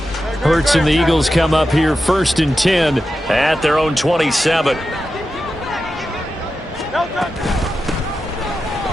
Hurts and the Eagles come up here 1st and 10 at their own 27.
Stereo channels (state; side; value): normal; both; correlation 0.91